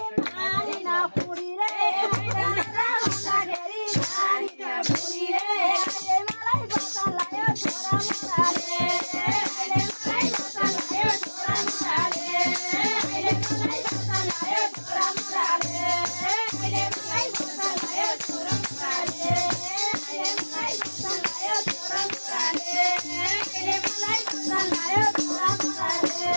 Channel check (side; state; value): both; inverted; correlation -1.00